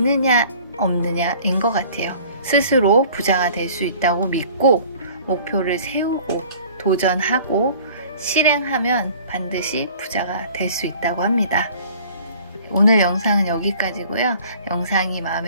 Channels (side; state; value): both; inverted; correlation -0.49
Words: 없느냐인 것 같아요. 스스로 부자가 될 수 있다고 믿고 목표를 세우고 도전하고 실행하면 반드시 부자가 될 수 있다고 합니다. 오늘 영상은 여기까지고요. 영상이